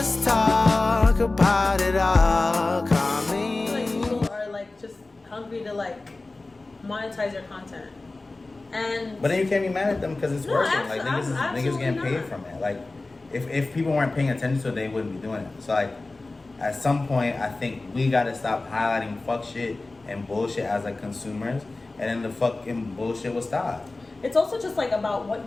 talk about it all. Call me. Like people are like just hungry to like monetize their content. And But then you can't be mad at them because it's working. Like niggas absolutely getting paid not. from it. Like if people weren't paying attention to it, they wouldn't be doing it. So like at some point, I think we gotta stop highlighting fuck shit and bullshit as like consumers, and then the fucking bullshit will stop. It's also just like about what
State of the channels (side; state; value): right; quieter; 3.2 dB